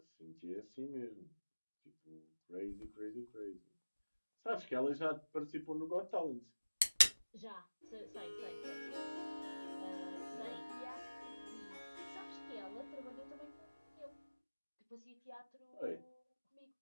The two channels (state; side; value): inverted; both; correlation -1.00